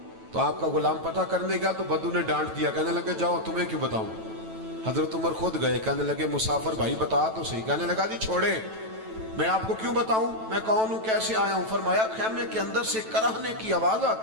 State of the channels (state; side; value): late; left; 9.1 ms